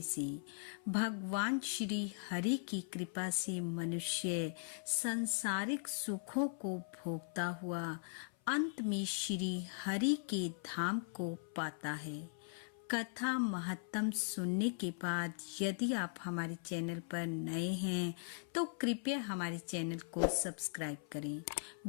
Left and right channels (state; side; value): silent; right; 51 dB below the other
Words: से भगवान श्री हरि की कृपा से मनुष्य सांसारिक सुखों को भोगता हुआ अंत में श्री हरि के धाम को पाता है। कथा महत्तम सुनने के बाद यदि आप हमारे चैनल पर नए हैं तो कृपया हमारे चैनल को सब्सक्राइब करें,